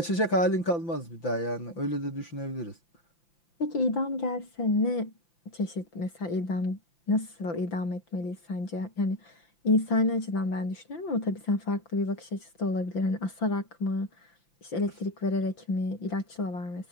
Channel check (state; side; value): late; right; 5.9 ms